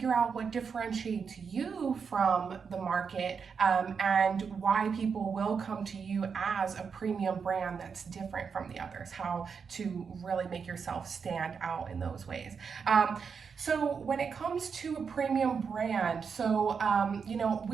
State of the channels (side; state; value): left; quieter; 6.0 dB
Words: out what differentiates you from the market, and why people will come to you as a premium brand that's different from the others, how to really make yourself stand out in those ways. So when it comes to a premium brand,